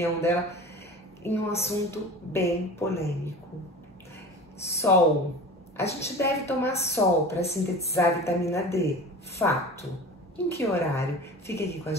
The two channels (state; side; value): normal; both; correlation 0.36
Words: dela em um assunto bem polêmico. Sol. A gente deve tomar sol para sintetizar a vitamina D. Fato. Em que horário? Fique aqui com a